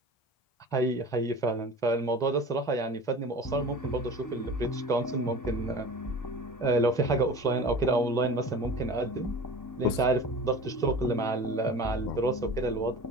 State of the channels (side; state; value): right; late; 2.1 ms